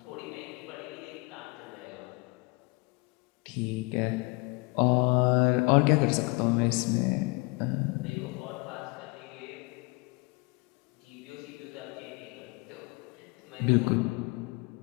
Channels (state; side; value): quieter; right; 27.3 dB